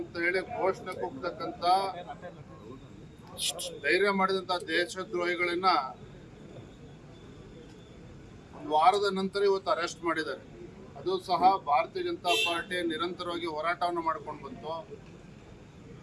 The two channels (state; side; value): identical; both; correlation 1.00